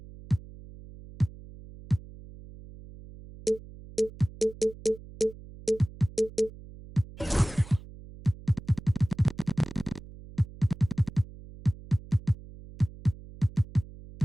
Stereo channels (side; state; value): right; noise; hum, 18 dB below the sound